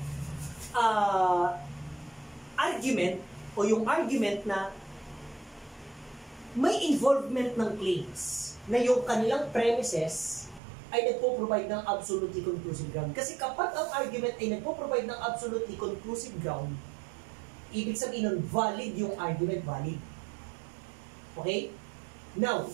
argument o yung argument na may involvement ng claims na yung kanilang premises ay nagpo-provide ng absolutely conclusive ground. Kasi kapag ang argument ay nagpo-provide ng absolutely conclusive ground, ibig sabihin nun, valid yung argument, valid. Okay? Now,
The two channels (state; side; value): drops out; left; at 10.6 s